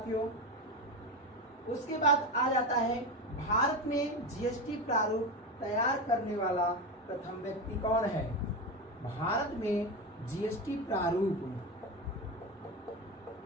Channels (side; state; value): both; normal; correlation 0.18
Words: उसके बाद आ जाता है भारत में जीएसटी प्रारूप तैयार करने वाला प्रथम व्यक्ति कौन है? भारत में जीएसटी प्रारूप,